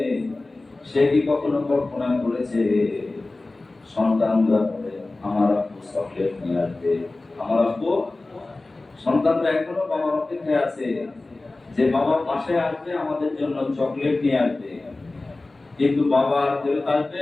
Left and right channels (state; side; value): quieter; right; 3.1 dB